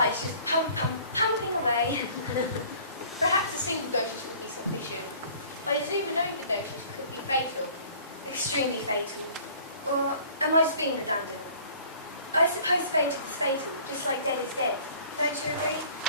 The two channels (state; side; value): inverted; both; correlation -0.51